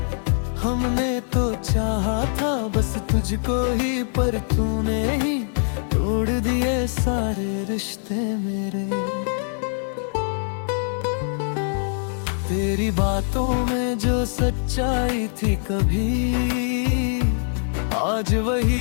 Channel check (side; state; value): right; silent; digital silence